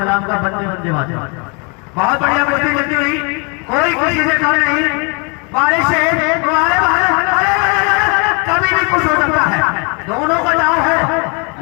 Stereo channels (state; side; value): quieter; right; 33.0 dB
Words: का बंदे बंदे मातरम। बहुत बढ़िया कुर्ती चलती रही, कोई किसी से कम नहीं, वारे शेर वारे बहादुर, कभी भी कुछ हो सकता है, दोनों का दाव है,